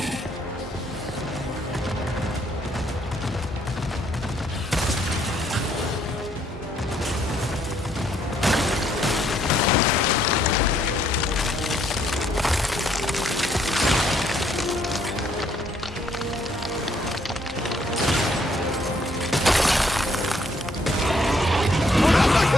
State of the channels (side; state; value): both; normal; correlation 0.69